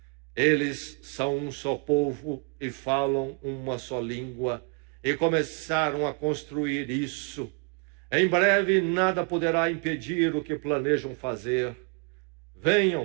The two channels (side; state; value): left; quieter; 34.4 dB